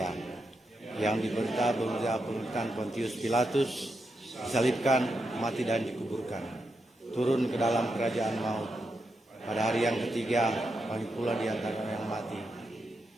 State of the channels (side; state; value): both; normal; correlation 0.85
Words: yang diberita pemerintahan Pontius Pilatus, disalibkan, mati dan dikuburkan, turun ke dalam kerajaan maut, pada hari yang ketiga, bangkit pula di antara yang mati,